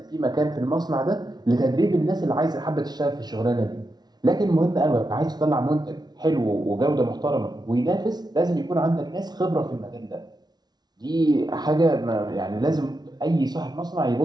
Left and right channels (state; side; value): late; left; 0.19 ms